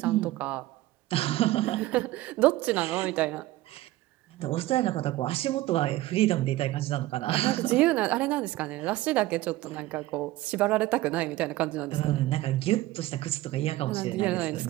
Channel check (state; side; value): quieter; left; 16.8 dB